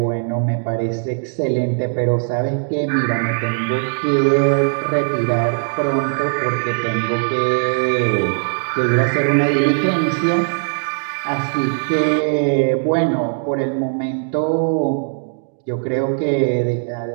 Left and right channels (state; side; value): silent; left; digital silence